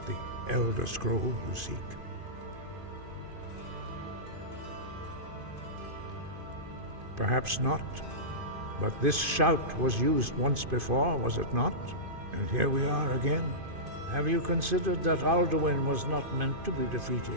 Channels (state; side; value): late; left; 2.5 ms